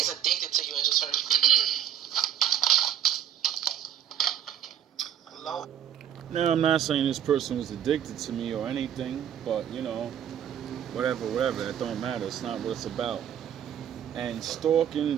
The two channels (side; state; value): left; quieter; 9.8 dB